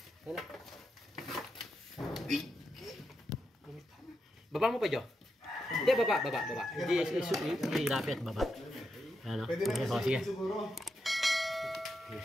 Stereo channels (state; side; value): normal; both; correlation 0.85